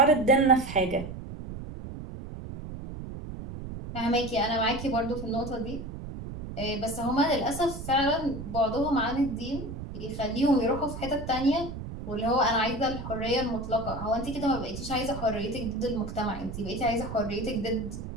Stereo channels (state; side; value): noise; right; rumble, 9 dB below the sound